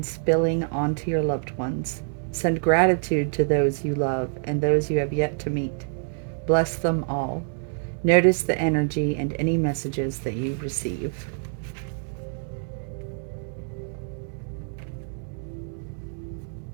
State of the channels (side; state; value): left; silent; 61 dB below the other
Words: spilling onto your loved ones. Send gratitude to those you love and those you have yet to meet. Bless them all. Notice the energy and any messages that you receive.